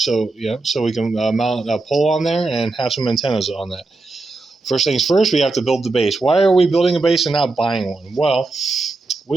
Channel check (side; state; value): left; quieter; 3.4 dB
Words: we can mount a pole on there and have some antennas on that. First things first, we have to build the base. Why are we building a base and not buying one? Well,